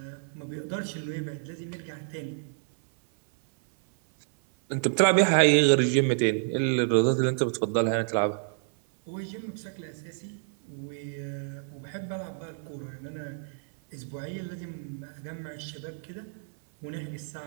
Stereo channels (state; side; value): silent; left; 57 dB below the other